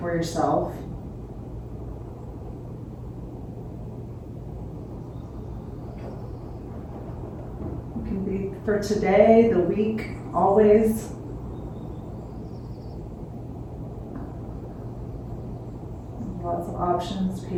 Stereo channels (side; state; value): both; identical; correlation 1.00